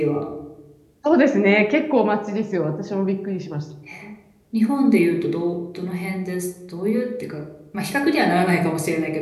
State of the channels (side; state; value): both; identical; correlation 1.00